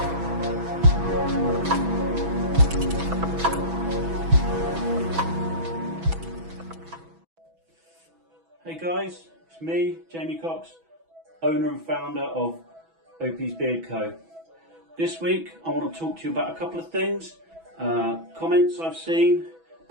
Hey guys, it's me, Jamie Cox, owner and founder of Opie's Beard Co. This week I want to talk to you about a couple of things, comments I've seen,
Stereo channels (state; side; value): late; left; 6.1 ms